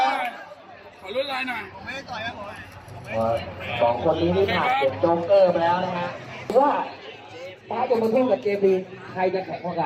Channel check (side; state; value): both; identical; correlation 1.00